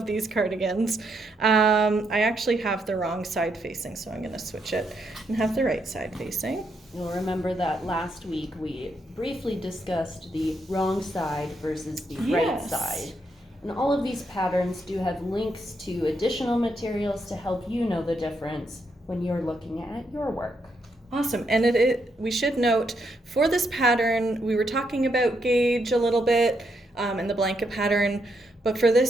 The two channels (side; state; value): both; normal; correlation 0.78